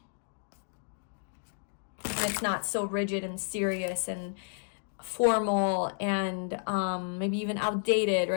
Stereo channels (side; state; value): right; silent; digital silence